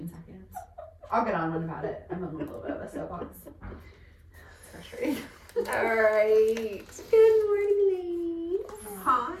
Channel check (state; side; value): identical; both; correlation 1.00